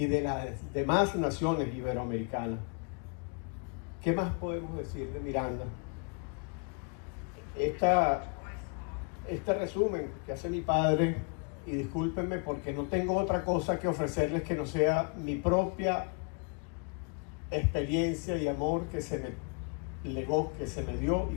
de las demás naciones iberoamericanas. ¿Qué más podemos decir de Miranda? Este resumen que hace mi padre, y discúlpenme porque no tengo otra cosa que ofrecerles que no sea mi propia experiencia y amor que se me legó, que se me dio y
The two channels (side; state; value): right; quieter; 36.6 dB